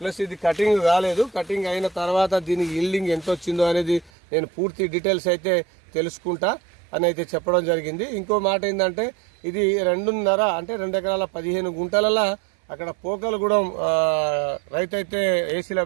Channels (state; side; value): drops out; left; at 4.1 s